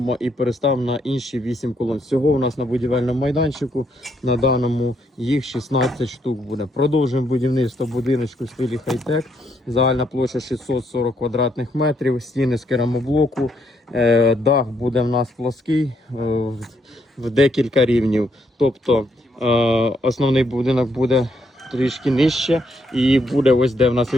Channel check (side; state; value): both; normal; correlation 0.74